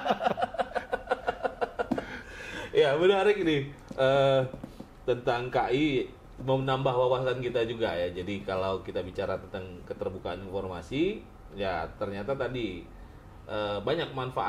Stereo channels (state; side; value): identical; both; correlation 1.00